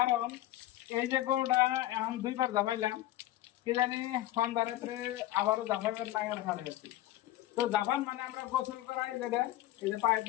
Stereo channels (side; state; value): right; quieter; 15.1 dB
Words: এই যে গরুটা এখন দুইবার জামাইলাম, কি জানি সন্ধ্যা রাত্রে আবারও জাফাইবার নাগার হারে আছি। তো জাপান মানে আমরা গোসল করাই যেটা, এই যে